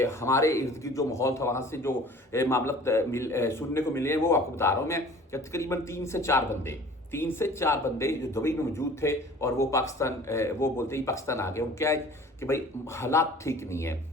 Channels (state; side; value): normal; both; correlation 0.47